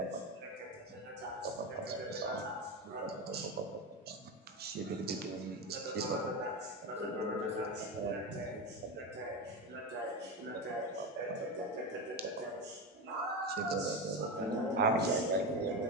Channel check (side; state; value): both; normal; correlation 0.17